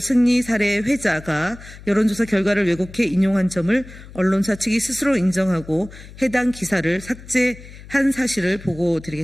사례 회자가 여론조사 결과를 왜곡해 인용한 점을 언론사 측이 스스로 인정하고 해당 기사를 삭제한 사실을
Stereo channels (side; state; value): left; noise; hum, 17 dB below the sound